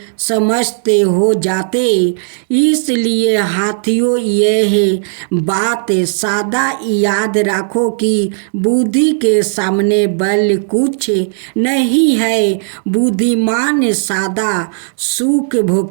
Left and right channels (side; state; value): left; silent; digital silence